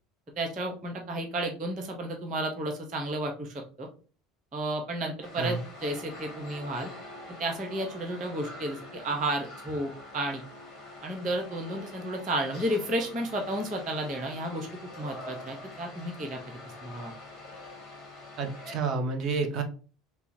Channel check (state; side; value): normal; both; correlation 0.43